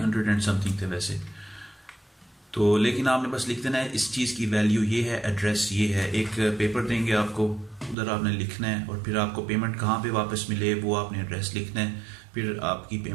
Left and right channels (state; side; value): drops out; left; at 8.0 s